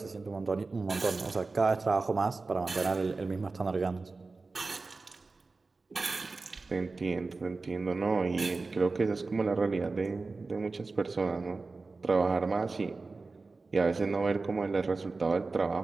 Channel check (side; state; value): left; quieter; 3.8 dB